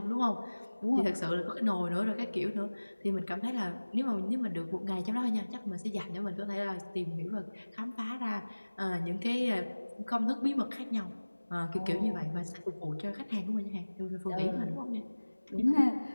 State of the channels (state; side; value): inverted; both; correlation -1.00